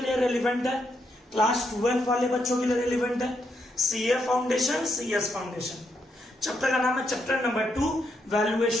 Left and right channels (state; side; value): normal; both; correlation 0.79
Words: लिए रेलिवेंट है? क्लास 12 वाले बच्चों के लिए रेलिवेंट है। CA foundation, CS foundation. Chapter का नाम है chapter number 2